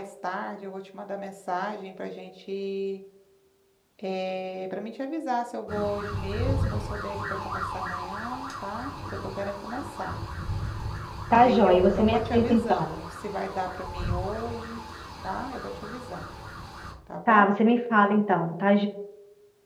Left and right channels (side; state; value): both; identical; correlation 1.00